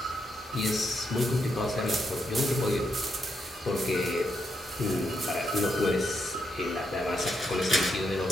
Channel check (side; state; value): both; normal; correlation 0.81